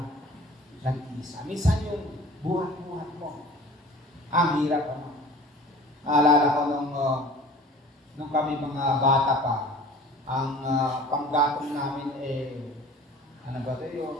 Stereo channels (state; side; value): normal; both; correlation 0.44